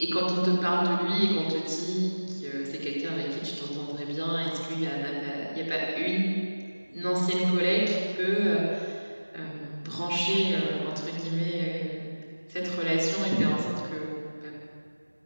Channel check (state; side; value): inverted; both; correlation -1.00